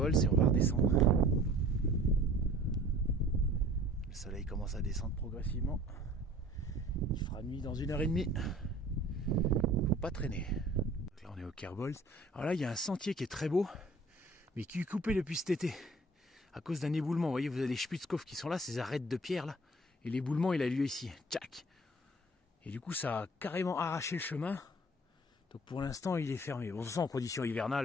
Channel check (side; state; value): both; normal; correlation 0.49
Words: et on va redescendre. Le soleil commence à descendre progressivement. Il fera nuit dans 1h30. Faut pas traîner. Donc là on est au Kerbolz. Alors là il y a un sentier qui est très beau, mais qui est coupé depuis cet été. À cause d'un éboulement. Vous voyez, vous avez les Spitzkopf qui sont là, ces arêtes de pierre là. Et l'éboulement il a lieu ici. Tchac. Et du coup ça a carrément arraché le chemin. Donc pour l'instant il est fermé. Bon, de toute façon en conditions